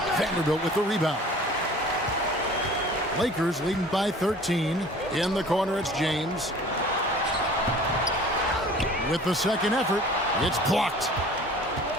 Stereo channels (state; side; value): normal; both; correlation 0.46